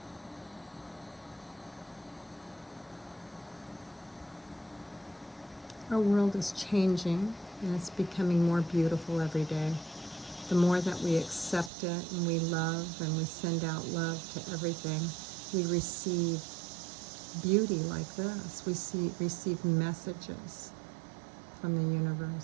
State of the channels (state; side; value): drops out; left; at 11.7 s